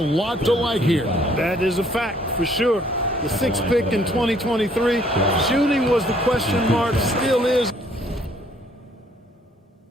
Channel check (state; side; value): normal; both; correlation 0.63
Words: to like here. That is a fact, for sure. The sixth pick in 2023. Shooting was the question mark, still is